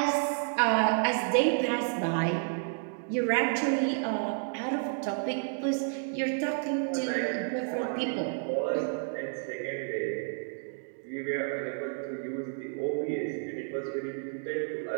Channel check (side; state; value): left; silent; digital silence